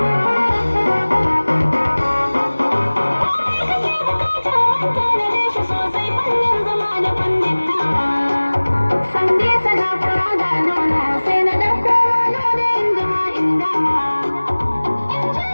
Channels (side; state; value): both; inverted; correlation -1.00